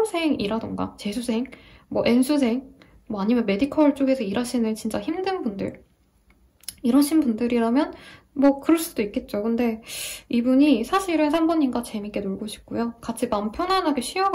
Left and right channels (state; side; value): identical; both; correlation 1.00